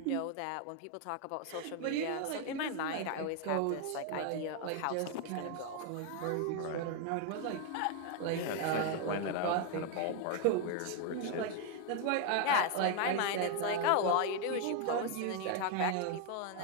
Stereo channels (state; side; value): different; both; correlation 0.01